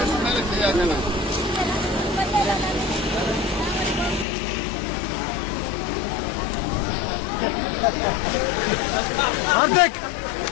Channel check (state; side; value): drops out; right; at 4.2 s